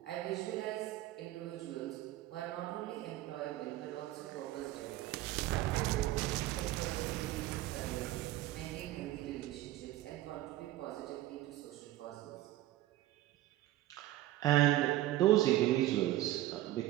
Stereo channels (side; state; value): left; quieter; 15.4 dB